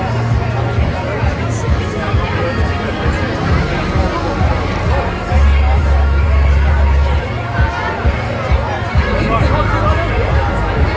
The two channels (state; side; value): identical; both; correlation 1.00